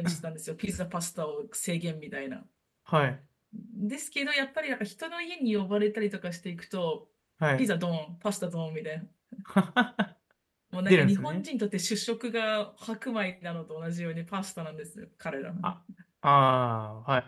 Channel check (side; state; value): both; identical; correlation 1.00